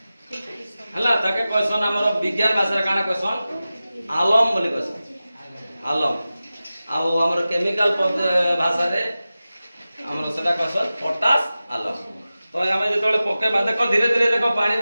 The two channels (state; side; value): inverted; both; correlation -0.95